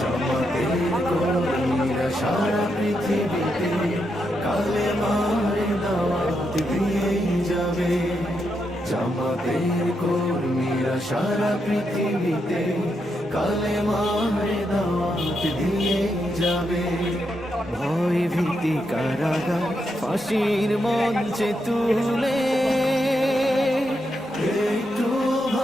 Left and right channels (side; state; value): both; normal; correlation 0.82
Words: কর্মীরা সারা পৃথিবীতে কালেমার দাওয়াত দিয়েই যাবে। জামাতের কর্মীরা সারা পৃথিবীতে কালেমার দাওয়াত দিয়ে যাবে। ভয় ভীতি কারাগার ফাঁসির মঞ্চে তুলে একটু